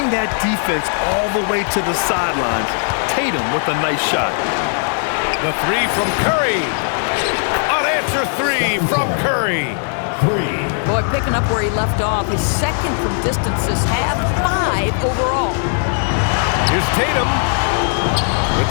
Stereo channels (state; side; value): silent; right; 58 dB below the other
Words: that defense all the way to the sidelines. Tatum with a nice shot. The 3 from Curry. Unanswered 3 from Curry. Boy, picking up where he left off. His second from distance this half, 5 overall. Here's Tatum with